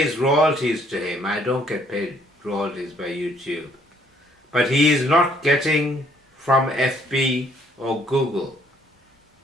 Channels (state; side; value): normal; both; correlation 0.65